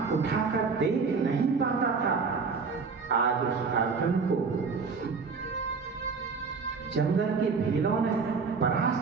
उठाकर देख नहीं पाता था। आज उस अर्जुन को जंगल के भीलों ने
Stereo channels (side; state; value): left; quieter; 5.0 dB